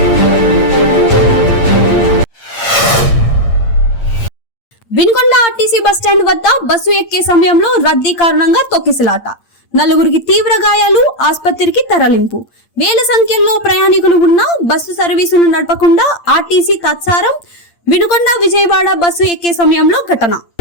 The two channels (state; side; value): late; right; 8.7 ms